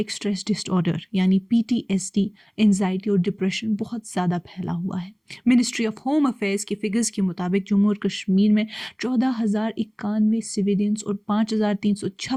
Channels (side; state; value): both; identical; correlation 1.00